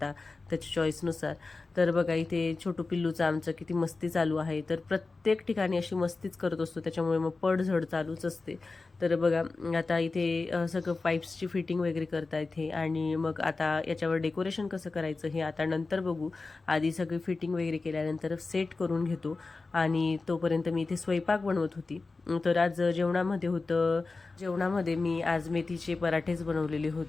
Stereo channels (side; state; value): right; quieter; 3.8 dB